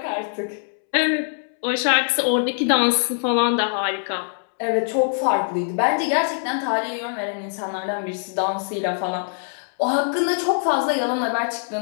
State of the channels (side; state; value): right; silent; 64 dB below the other